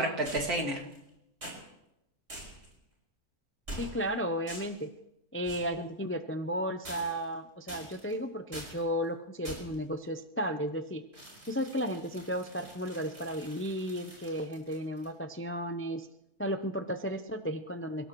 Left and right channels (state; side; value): normal; both; correlation 0.02